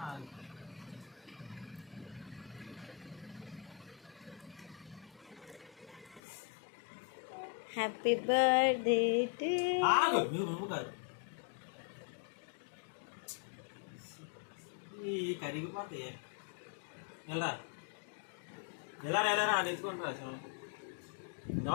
హ్యాపీ బర్త్డే టు కరిగిపోతాయి. ఎలా ఎలా ఎలా తెచ్చుకుంటారా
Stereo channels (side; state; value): right; drops out; at 6.2 s